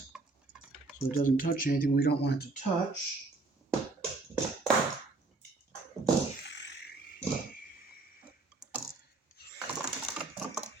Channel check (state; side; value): quieter; left; 3.5 dB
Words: so it doesn't touch anything we don't want it to touch.